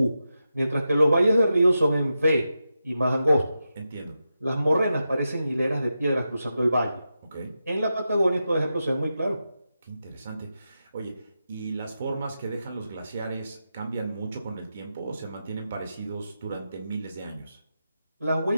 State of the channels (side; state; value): both; inverted; correlation -0.89